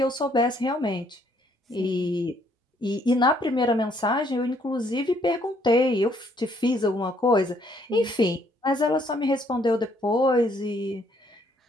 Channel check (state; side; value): normal; both; correlation 0.67